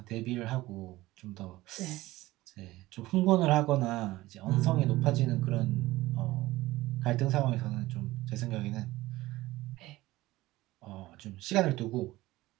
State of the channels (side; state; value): left; quieter; 18.0 dB